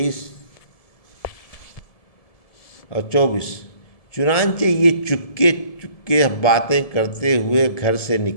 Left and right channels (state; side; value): late; right; 1.7 ms